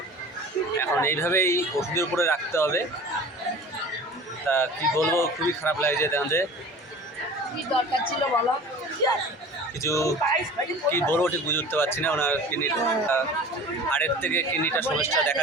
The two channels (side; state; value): both; normal; correlation 0.40